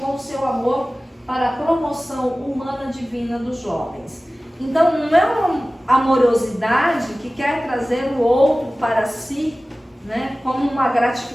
o seu amor para a promoção humana divina dos jovens. Então, não é uma amorosidade que quer trazer o outro para si, né, como uma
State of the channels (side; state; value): both; normal; correlation 0.97